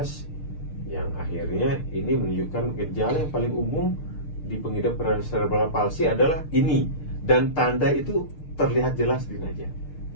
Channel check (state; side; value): late; right; 6.6 ms